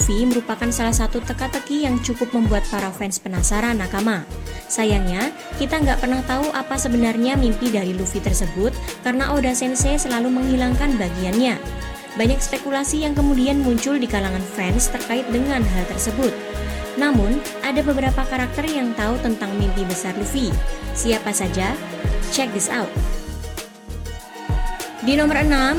merupakan salah satu teka-teki yang cukup membuat para fans penasaran nakama. Sayangnya, kita nggak pernah tahu apa sebenarnya mimpi dari Luffy tersebut karena Oda Sensei selalu menghilangkan bagiannya. Banyak spekulasi yang kemudian muncul di kalangan fans terkait dengan hal tersebut. Namun, ada beberapa karakter yang tahu tentang mimpi besar Luffy. Siapa saja? Check this out. Di nomor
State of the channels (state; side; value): identical; both; correlation 1.00